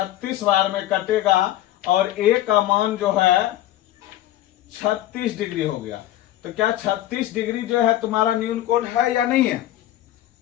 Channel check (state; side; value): quieter; right; 13.9 dB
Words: बार में कटेगा और ए का मान जो है 36 डिग्री हो गया। तो क्या 36 डिग्री जो है तुम्हारा न्यून कोण है या नहीं है?